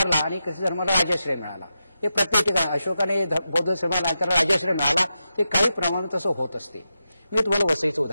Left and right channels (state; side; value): inverted; both; correlation -0.88